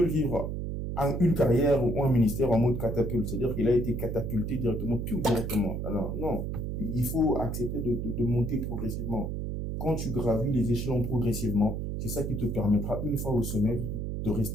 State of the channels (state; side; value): noise; right; hum, 3 dB below the sound